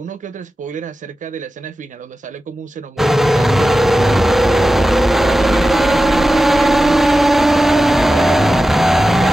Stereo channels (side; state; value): both; normal; correlation 0.94